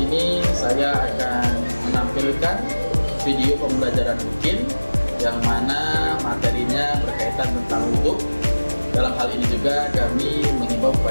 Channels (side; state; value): both; inverted; correlation -1.00